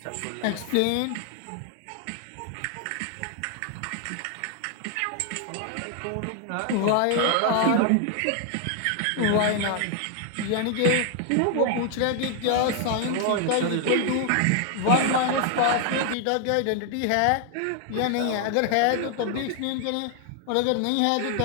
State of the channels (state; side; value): different; both; correlation 0.00